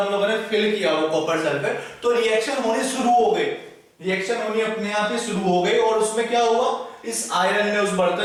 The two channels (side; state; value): both; identical; correlation 1.00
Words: लोगों ने फिल किया वो कॉपर सल्फेट, तो रिएक्शन होनी शुरू हो गई, रिएक्शन होनी अपने आप ही शुरू हो गई, और उसमें क्या हुआ, इस आयरन ने, उस